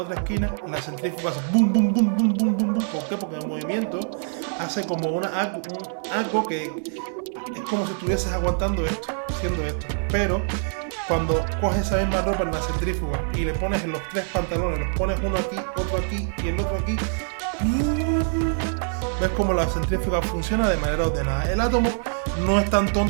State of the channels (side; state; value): left; silent; digital silence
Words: esquina, la centrífuga hace boom, boom, boom, boom, boom, boom, boom. ¿Por qué? Porque el movimiento hace como algo que es como si estuvieses aguantando haciendo esto. Pero cuando coges esa misma ropa en la centrífuga y le pones en los 3 pantalones, los pones uno aquí, otro aquí y el otro aquí, ves como la centrífuga funciona de manera ordenada. El átomo no es tan